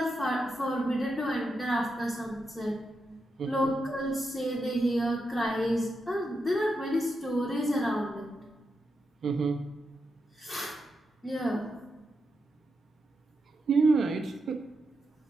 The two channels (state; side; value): normal; both; correlation 0.86